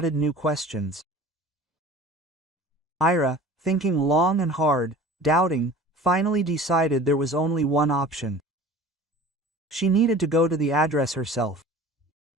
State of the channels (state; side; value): normal; both; correlation 0.42